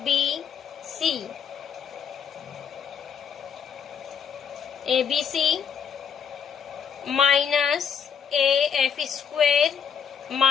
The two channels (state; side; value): quieter; right; 7.2 dB